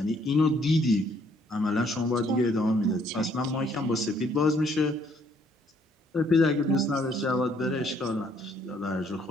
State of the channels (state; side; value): normal; both; correlation 0.66